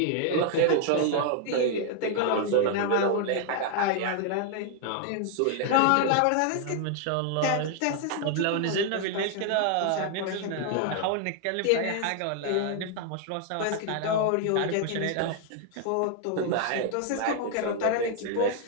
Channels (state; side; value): different; both; correlation 0.00